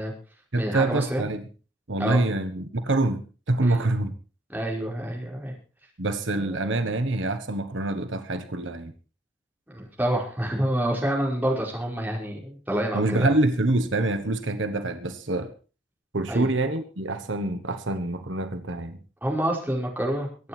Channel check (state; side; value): normal; both; correlation 0.63